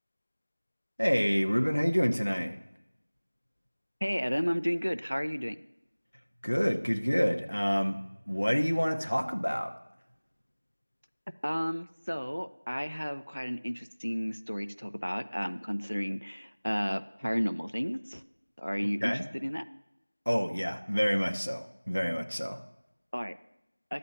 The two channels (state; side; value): inverted; both; correlation -1.00